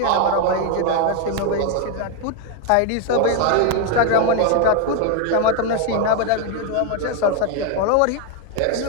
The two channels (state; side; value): different; both; correlation 0.01